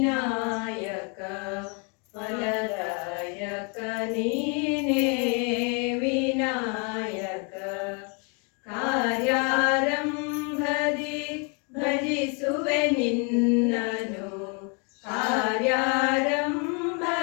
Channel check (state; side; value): quieter; right; 35.7 dB